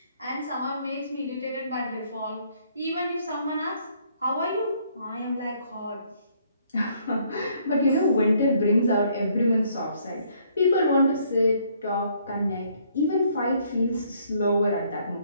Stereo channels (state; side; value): inverted; both; correlation -0.66